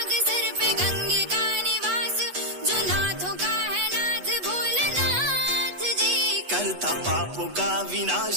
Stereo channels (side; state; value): left; late; 8.2 ms